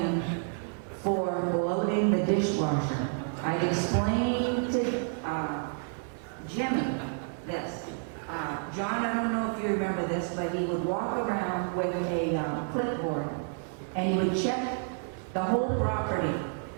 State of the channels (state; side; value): silent; left; 58 dB below the other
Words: For loading the dishwasher. I'd explained to Jimmy this. John, I don't know if you remember this, but he would walk around with a clipboard and he would check the whole property.